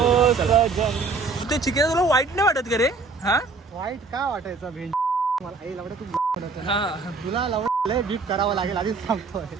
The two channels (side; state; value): left; quieter; 4.1 dB